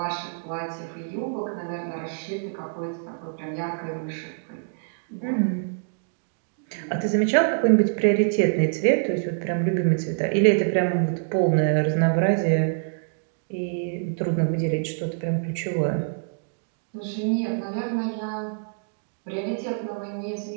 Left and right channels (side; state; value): left; silent; digital silence